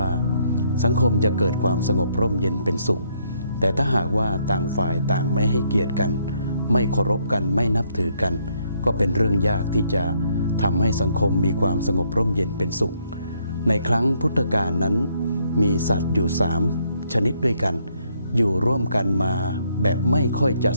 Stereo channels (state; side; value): inverted; both; correlation -0.71